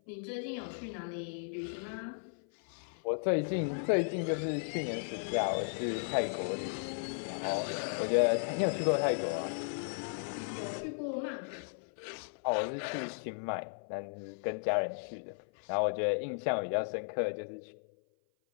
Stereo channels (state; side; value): silent; right; 54 dB below the other